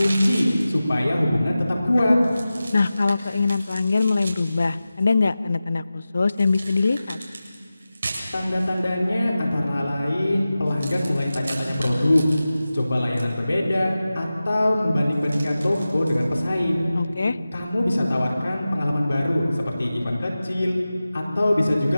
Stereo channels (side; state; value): both; inverted; correlation -0.95